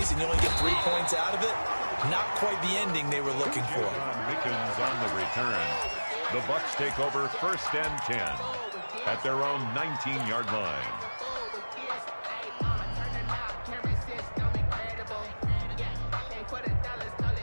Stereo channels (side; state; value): both; inverted; correlation -1.00